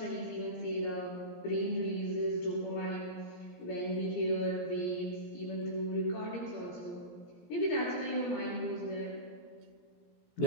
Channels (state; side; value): late; right; 17 ms